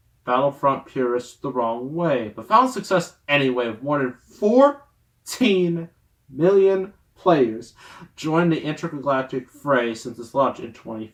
Battlefront purists the wrong way, but found success anyway, with more than 14 million players joined the intergalactic fray since its launch in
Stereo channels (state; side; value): identical; both; correlation 1.00